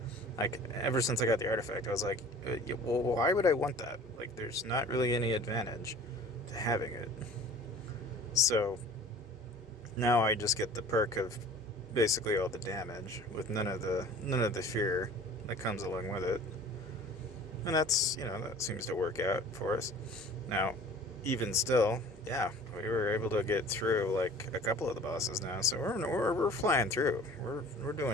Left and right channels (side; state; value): both; normal; correlation 0.46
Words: Like, ever since I got the artifact, I was like, well, why would I want that? Like, there's not really any advantage to having it. So now I just get the perk of basically all the damage with none of the fear that comes along with it. And that's, that seems to work out for us. Now, even still, yeah, we were able to get through like a couple of the bosses now, so we're flying through. We're